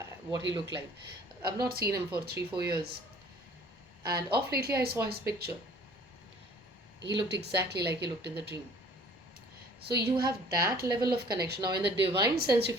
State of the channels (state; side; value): normal; both; correlation 0.52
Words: what he looked like. I've not seen him for 3 4 years, and off lately I saw his picture. He looked exactly like he looked in the dream. So you have that level of connection. Now, in the divine sense,